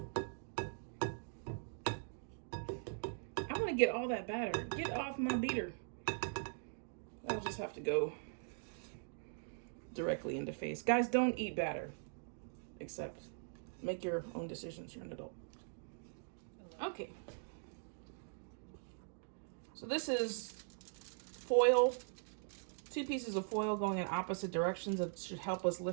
I want to get all that batter. Get off my beater. I'll just have to go directly into face. Guys, don't eat batter. Except make your own decisions. You're an adult. Okay. So this is foil. 2 pieces of foil going in opposite directions. That should help us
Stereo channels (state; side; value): silent; left; digital silence